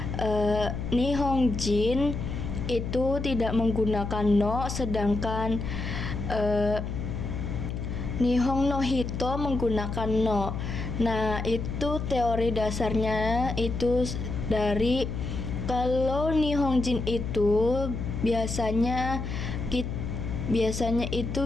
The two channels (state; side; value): noise; left; hum, 4 dB below the sound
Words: Nihonjin itu tidak menggunakan no, sedangkan Nihon no hito menggunakan no. Nah, itu teori dasarnya itu dari kalau Nihonjin itu biasanya itu